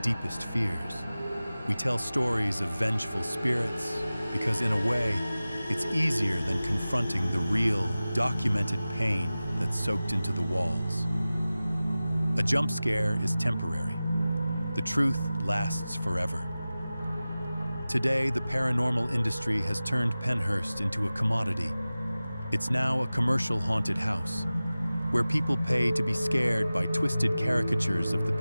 fears. We tell stories of vengeful spirits because, in a way, it's easier than confronting the real, documented pain that's soaked into the walls. A jump scare is temporary. The truth lasts forever. Today, the paranormal industry has turned Pennhurst into a commodity. It's now a commercial haunted house, where people pay to be scared by twisted caricatures of the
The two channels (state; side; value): inverted; both; correlation -0.96